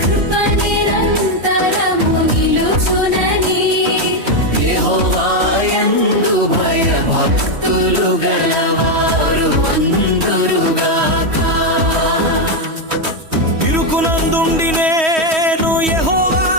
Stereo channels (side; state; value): left; late; 3.1 ms